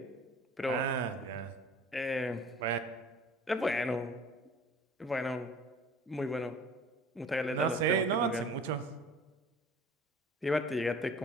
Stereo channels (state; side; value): normal; both; correlation 0.46